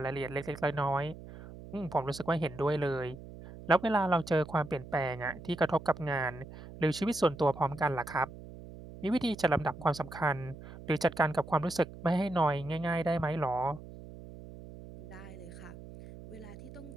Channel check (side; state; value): right; noise; hum, 15 dB below the sound